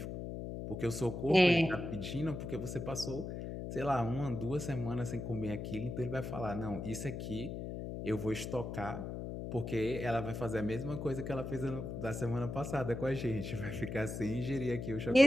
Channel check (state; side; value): noise; left; hum, 6 dB below the sound